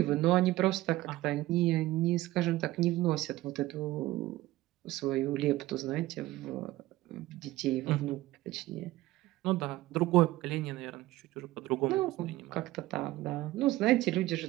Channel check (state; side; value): quieter; left; 17.1 dB